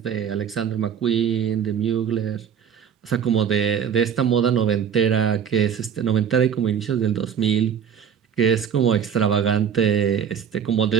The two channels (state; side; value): quieter; left; 8.0 dB